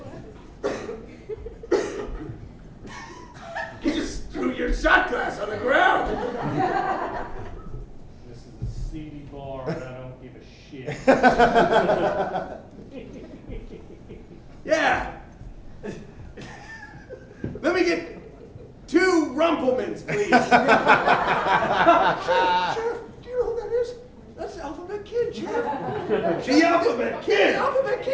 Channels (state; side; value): identical; both; correlation 1.00